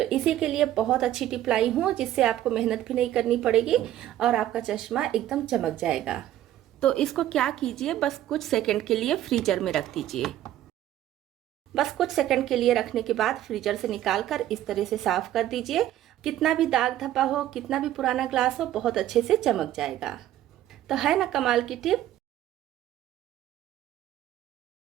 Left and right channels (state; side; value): quieter; left; 12.9 dB